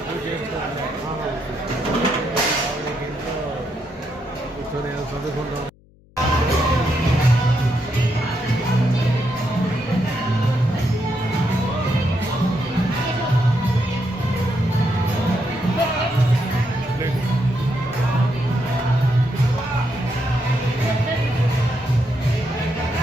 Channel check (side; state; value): left; noise; hum, 28 dB below the sound